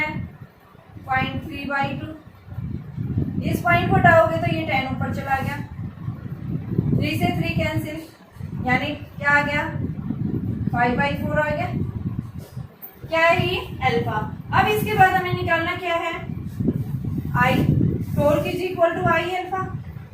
0.3/2। इस पॉइंट को हटाओगे तो ये 10 ऊपर चला गया, 3 से 3 कैंसिल यानी क्या आ गया 5/4 आ गया। क्या है ये अल्फा। अब इसके बाद हमें निकालना क्या है I, torque is equal to I alpha.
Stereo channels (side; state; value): both; identical; correlation 1.00